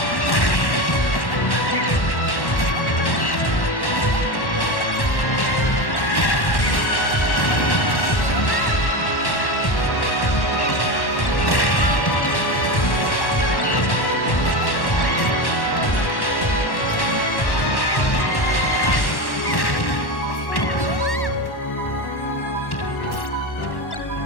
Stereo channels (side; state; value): right; late; 1.1 ms